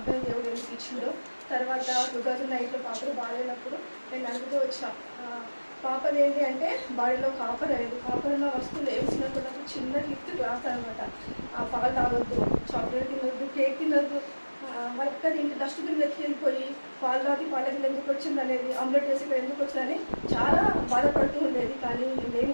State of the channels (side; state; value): both; inverted; correlation -1.00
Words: దేవుడు ఎందుకు ఇచ్చిందో. తర్వాత 2008లో పాపలు బాగాలేనప్పుడు నేను అడుగుతూ వచ్చా పాపది ఏంటి అంటే బాడీలో కాపర్ అనేది, కాపర్ ఉన్న వస్తువులు వేసినప్పుడు చిన్న లిఫ్ట్ గ్లాస్ అనమాట. పాలు తాగొద్దు, చాక్లెట్ తినొద్దు, కేక్ తినొద్దు, వాళ్ళకి ఇంటి డస్ట్బిన్ వెతికి వెళ్ళిపోయి పాలు తాగి పాలకి ఎందుకు వచ్చింది అనేది, ఆమ్లెట్ వేసి ఇక్కడ ఎందుకు వచ్చిందని చాలా బాధపడుతూ ఉండేది. కానీ మేము